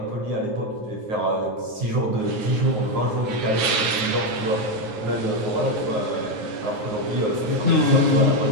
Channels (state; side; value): late; left; 9.8 ms